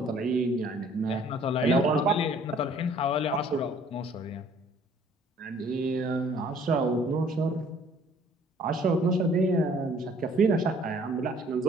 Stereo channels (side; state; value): both; normal; correlation 0.57